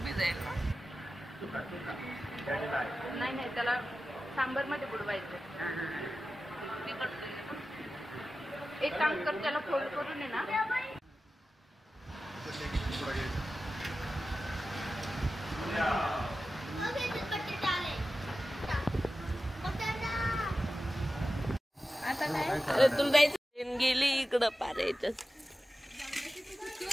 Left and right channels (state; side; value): normal; both; correlation 0.94